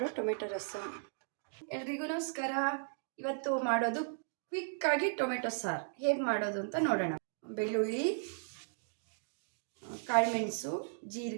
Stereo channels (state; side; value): silent; left; digital silence